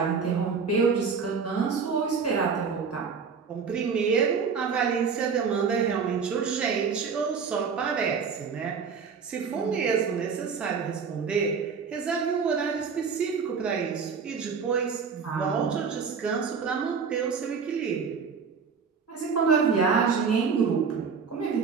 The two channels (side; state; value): left; quieter; 5.8 dB